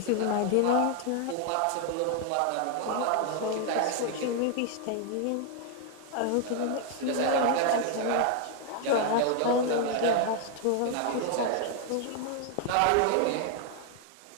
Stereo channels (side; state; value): both; different; correlation 0.00